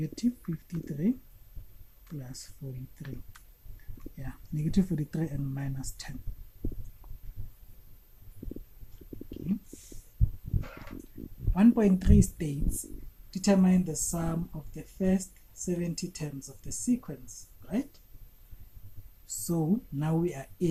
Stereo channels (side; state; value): both; identical; correlation 1.00